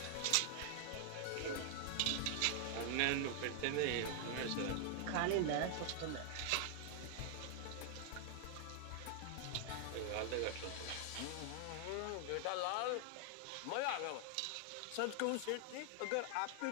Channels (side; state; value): both; different; correlation 0.00